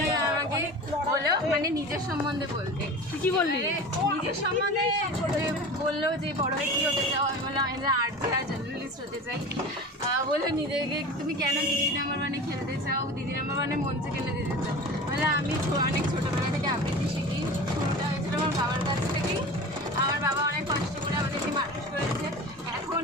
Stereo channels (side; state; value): both; normal; correlation 0.35